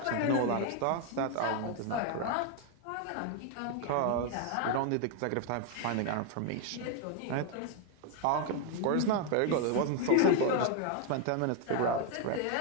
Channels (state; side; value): different; both; correlation 0.01